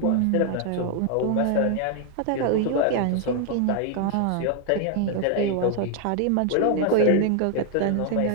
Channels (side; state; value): both; different; correlation 0.00